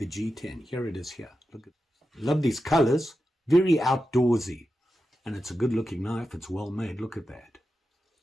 G10. Here it is here. Look at it. Love these colors. Very outdoorsy. And it's a good looking knife. It's well made. Look at that.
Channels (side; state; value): both; normal; correlation 0.90